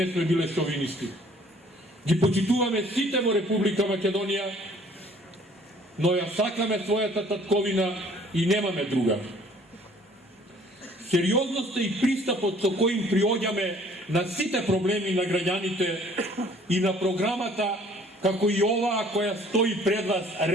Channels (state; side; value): normal; both; correlation 0.56